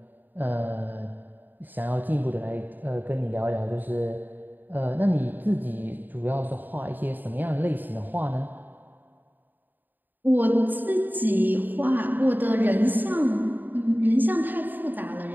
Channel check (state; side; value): late; left; 0.089 ms